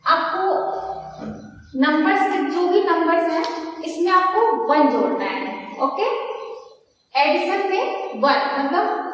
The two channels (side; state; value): both; identical; correlation 1.00